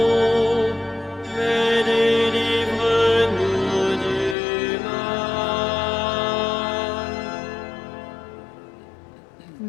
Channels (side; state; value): right; drops out; at 4.4 s